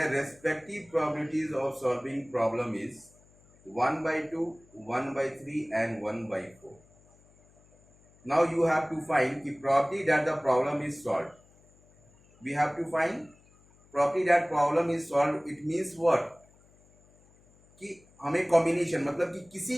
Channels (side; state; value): left; noise; hum, 29 dB below the sound